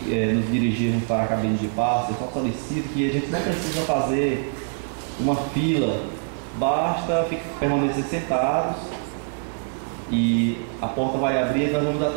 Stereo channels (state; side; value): silent; left; 58 dB below the other